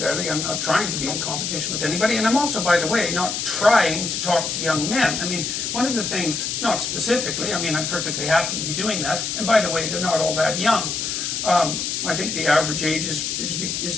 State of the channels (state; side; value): noise; left; hiss, 2 dB below the sound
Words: I'm not trying to be in competition with anybody. And I'm also, by the way, not trying to talk to young men. I mean, one of the things, not specifically, I'm perfectly happy to be doing that. And by the way, they're not all that young. I think the average age is